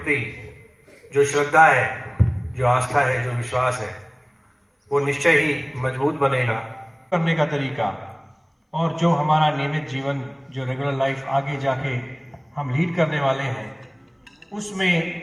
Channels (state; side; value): identical; both; correlation 1.00